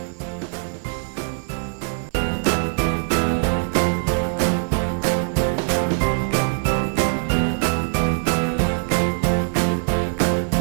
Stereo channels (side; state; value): left; silent; 64 dB below the other